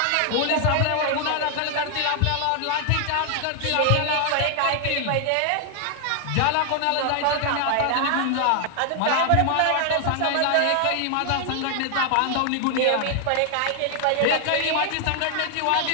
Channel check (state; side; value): different; both; correlation 0.00